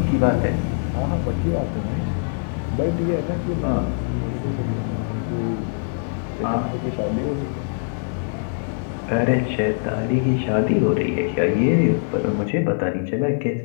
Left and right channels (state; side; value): silent; right; digital silence